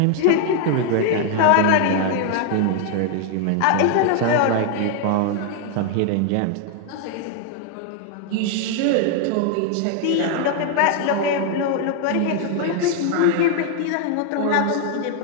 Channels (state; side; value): different; both; correlation 0.00